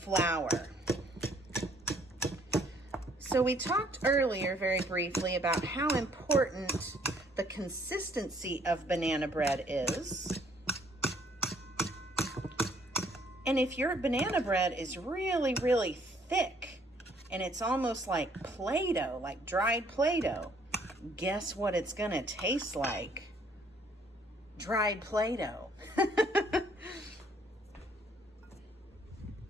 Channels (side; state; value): both; normal; correlation 0.63